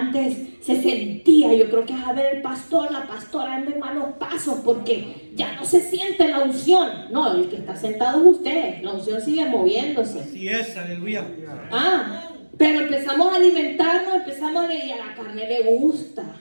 se sentía, yo creo que es a ver el pastor, la pastora anda en malos pasos porque ya no se siente la unción. No, el que está sentado es usted, la unción sigue moviéndose. Así es, aleluya. Pero empezamos a alimentarnos, empezamos a leer y a la carne le gusta.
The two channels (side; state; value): both; inverted; correlation -1.00